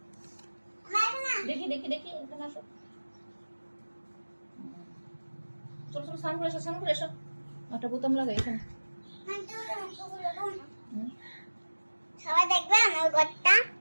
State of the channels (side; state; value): both; inverted; correlation -1.00